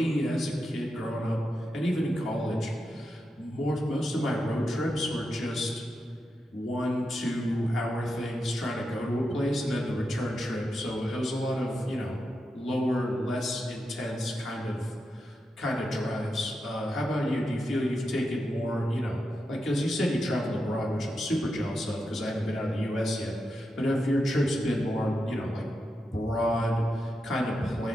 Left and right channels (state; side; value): normal; both; correlation 0.87